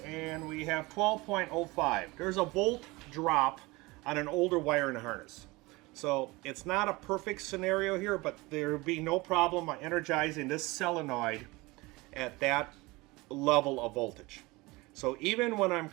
and we have 12.05. There's a volt drop on an older wiring harness. So it's not a perfect scenario here, but there would be no problem energizing this solenoid at that level of voltage. So even when I'm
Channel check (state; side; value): quieter; left; 22.8 dB